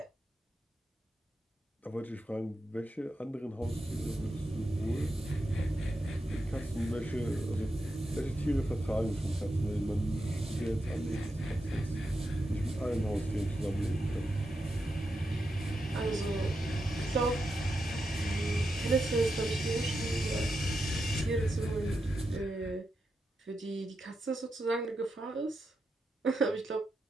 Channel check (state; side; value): normal; both; correlation 0.87